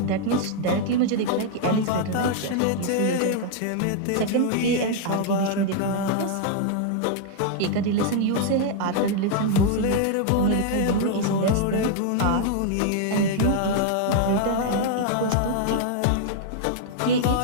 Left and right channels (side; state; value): both; different; correlation 0.00